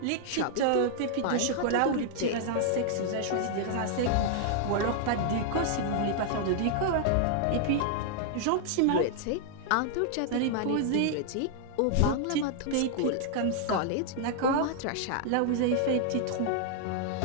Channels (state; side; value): different; both; correlation -0.01